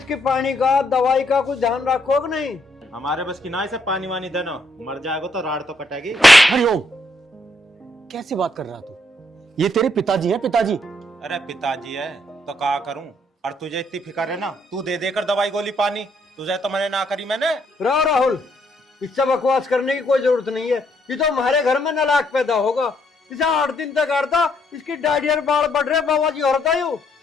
पानी का दवाई का कुछ ध्यान रखो कि नहीं? हमारे बस की ना इसे पानी वानी देना, मर जाएगा तो राड तो कटेगी। हरिओम, कैसी बात कर रहा तू? ये तेरे पिताजी हैं, पिताजी। अरे पिताजी है तो क्या करूं? और तुझे इतनी फिक्र है ना, तू दे देकर दवाई गोली पानी, तुझे तो मैंने ना करी मैंने। राहुल, इससे बकवास करने की कोई जरूरत नहीं है। ये तो हमारे घर में नालायक पैदा होगा। इसे 8 दिन तक करता, इसकी डायरिया बाल बढ़ रहे, बाबा जी औरत आयु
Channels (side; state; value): both; normal; correlation 0.72